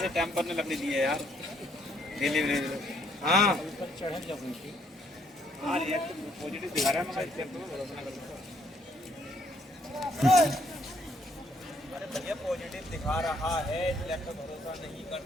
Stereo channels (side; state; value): both; normal; correlation 0.68